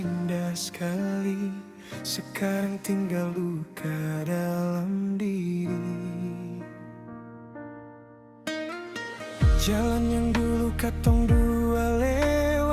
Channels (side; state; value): both; identical; correlation 1.00